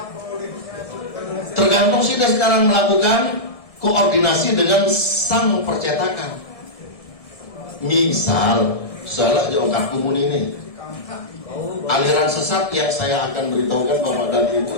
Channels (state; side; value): late; right; 1.6 ms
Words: Tergantung kita sekarang melakukan koordinasi dengan sang percetakan. Misal, salah di Ongkar Kumun ini. Aliran sesat yang saya akan beritahukan Bapak dan